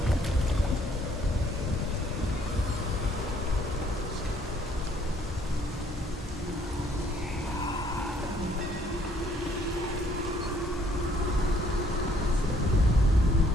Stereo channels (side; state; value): both; normal; correlation 0.63